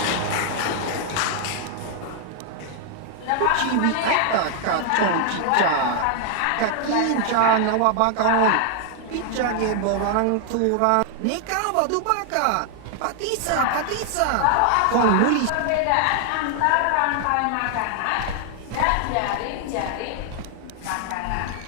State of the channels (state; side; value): different; both; correlation 0.00